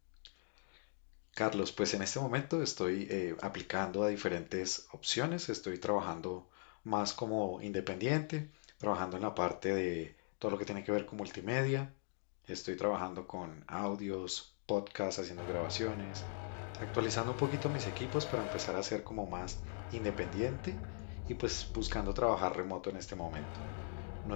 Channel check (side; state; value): right; silent; 51 dB below the other